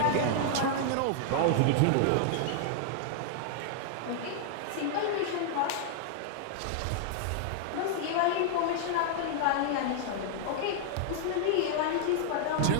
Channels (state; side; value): different; both; correlation -0.01